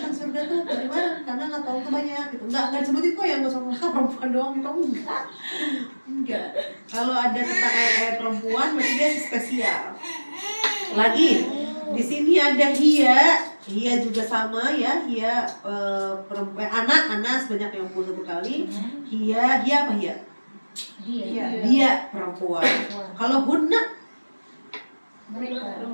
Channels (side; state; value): both; inverted; correlation -1.00